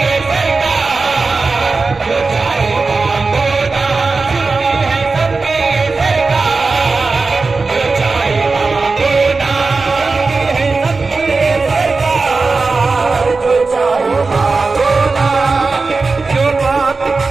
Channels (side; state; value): left; quieter; 4.0 dB